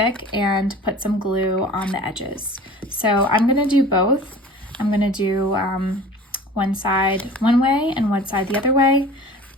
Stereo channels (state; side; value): normal; both; correlation 0.42